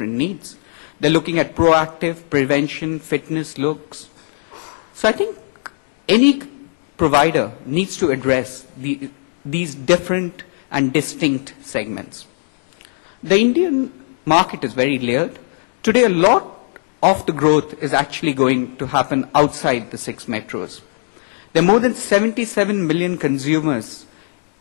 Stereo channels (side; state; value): right; silent; digital silence